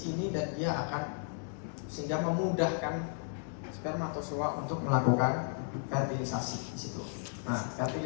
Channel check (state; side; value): silent; right; digital silence